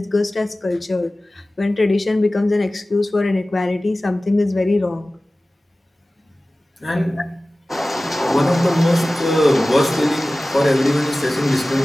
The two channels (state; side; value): normal; both; correlation 0.97